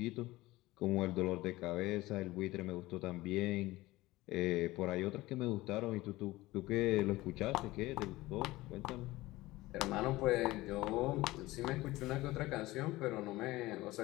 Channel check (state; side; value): quieter; right; 18.7 dB